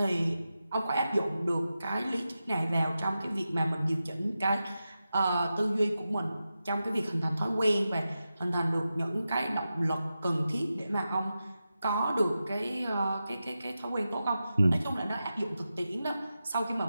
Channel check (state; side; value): inverted; both; correlation -0.91